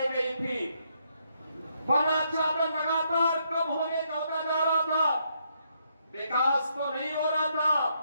गई थी, वनाच्छादन लगातार कम होने का होता जा रहा था। विकास तो नहीं हो रहा था,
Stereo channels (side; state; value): both; inverted; correlation -0.75